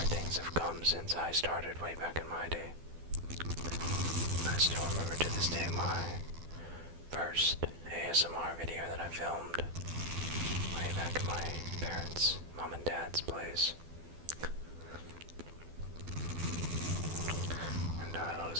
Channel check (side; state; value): left; late; 12 ms